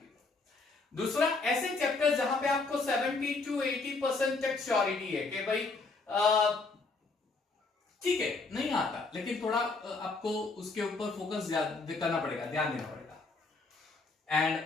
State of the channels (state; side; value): quieter; right; 3.8 dB